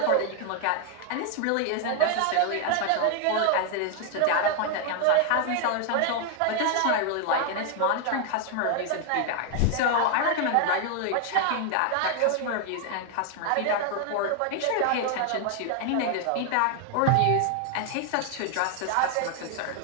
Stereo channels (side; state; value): both; different; correlation 0.00